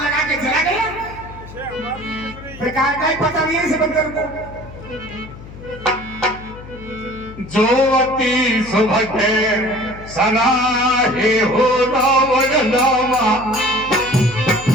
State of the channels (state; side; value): noise; left; hum, 16 dB below the sound